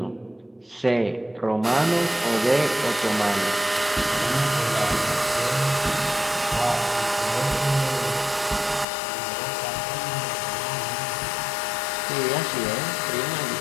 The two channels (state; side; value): drops out; right; at 8.8 s